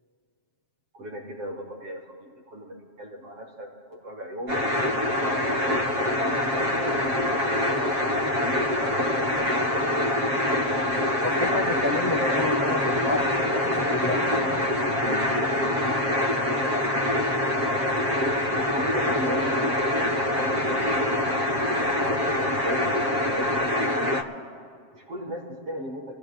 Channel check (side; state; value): left; late; 7.5 ms